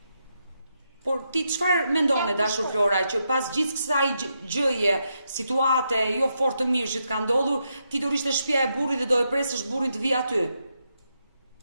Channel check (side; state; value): both; inverted; correlation -0.83